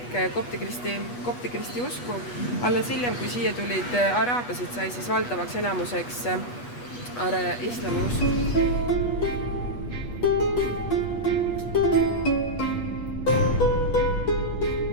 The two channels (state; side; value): late; right; 8.2 ms